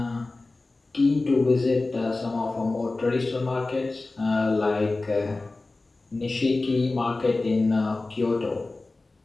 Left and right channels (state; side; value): quieter; right; 3.3 dB